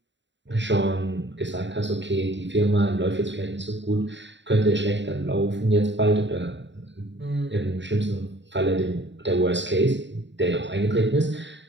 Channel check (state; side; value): late; left; 0.53 ms